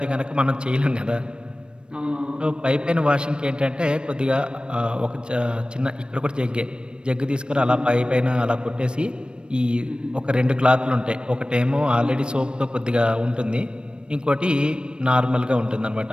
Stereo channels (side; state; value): left; late; 0.054 ms